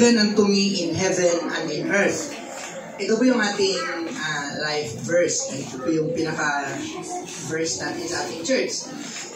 unto me in heaven and in earth. Ito po yung ating life verse. Ito po yung pinaka-verse natin sa ating church.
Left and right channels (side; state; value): both; identical; correlation 1.00